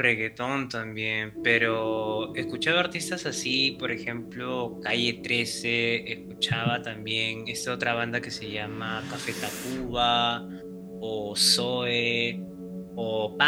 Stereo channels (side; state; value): both; identical; correlation 1.00